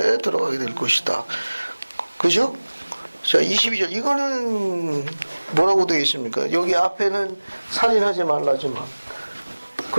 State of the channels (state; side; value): inverted; both; correlation -1.00